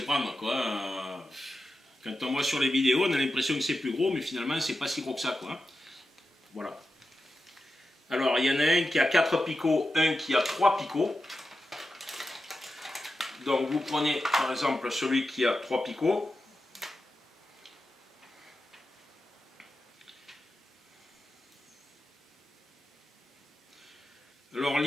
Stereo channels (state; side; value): normal; both; correlation 0.91